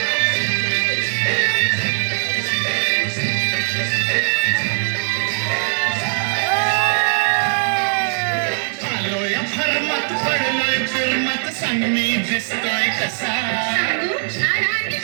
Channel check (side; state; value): left; silent; digital silence